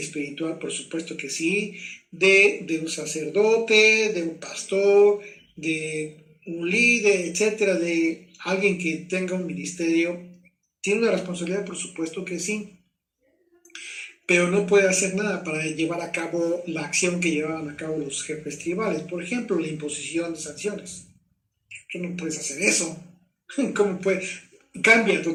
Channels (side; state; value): both; identical; correlation 1.00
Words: por supuesto que sí, de un sacerdote, de un pastor, de un líder, etcétera, de alguien que tenga un ministerio. Tiene una responsabilidad, por supuesto que sí, pero no puede hacer nada para llevar a cabo la acción que llevaban a cabo los jefes tribales. Por ejemplo, la imposición de sanciones. Tú no puedes hacer eso. ¿Cómo puede? Cambia